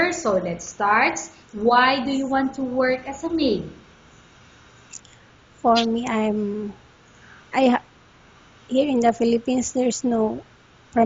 So let's start. Why do you want to work as a maid? for me, here in the Philippines, there's no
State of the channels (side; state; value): both; identical; correlation 1.00